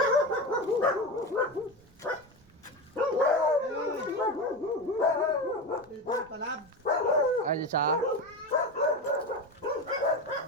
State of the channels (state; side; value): noise; right; rumble, 27 dB below the sound